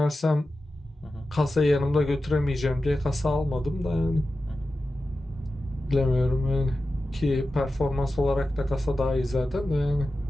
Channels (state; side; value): normal; both; correlation 0.93